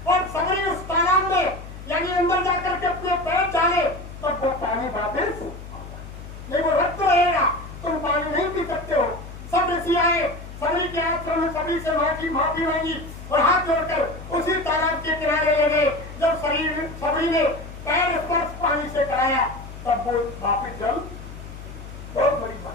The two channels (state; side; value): noise; left; hum, 13 dB below the sound